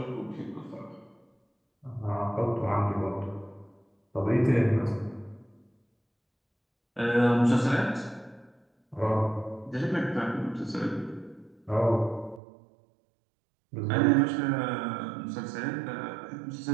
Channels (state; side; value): drops out; left; at 12.4 s